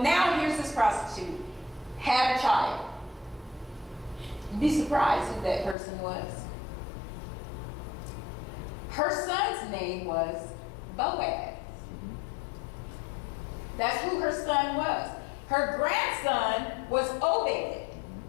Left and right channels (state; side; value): drops out; right; at 5.8 s